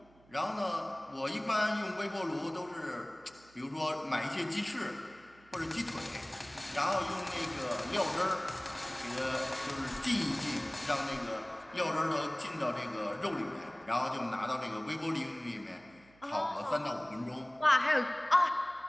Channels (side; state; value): right; noise; hum, 28 dB below the sound